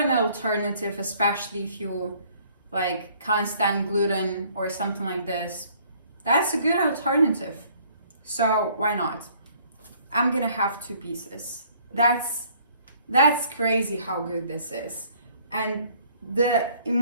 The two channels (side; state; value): both; inverted; correlation -0.60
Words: alternative, especially if you like can't stand gluten or something like this, that's a good alternative. So why not? I'm gonna have 2 pieces. That's crazy how good this is. And the